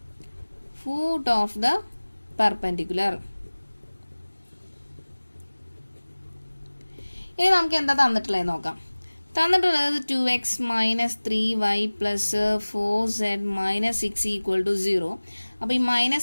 ഫൂട്ട് ഓഫ് ദ പെർപെൻഡിക്കുലർ. ഇനി നമുക്ക് എന്താ തന്നിട്ടുള്ളത് നോക്കാം. തന്നിട്ടുള്ളത് 2x minus 3y plus 4z minus 6 equal to 0. അപ്പോൾ ഈ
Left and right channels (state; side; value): inverted; both; correlation -1.00